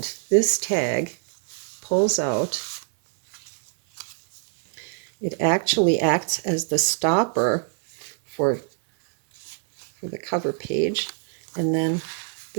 this tag pulls out. It actually acts as the stopper for the cover page. And then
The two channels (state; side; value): silent; left; 61 dB below the other